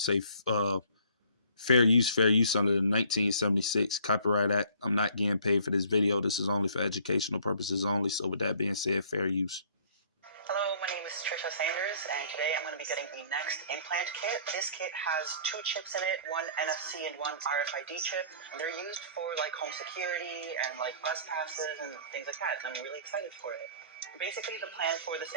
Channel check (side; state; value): both; inverted; correlation -0.54